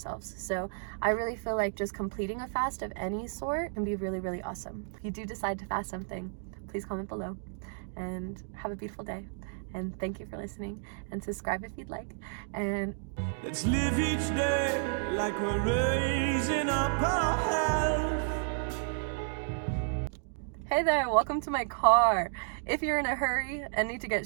So I really feel like just completing a fast of any sort can be really, really awesome. If you do decide to fast something, please comment below, and have a beautiful day. And thank you for listening, and subscribe if you'd like. And let's live each day like we're raising up our health. hey there, welcome to my car. If you're in a hurry and need to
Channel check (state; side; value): silent; left; digital silence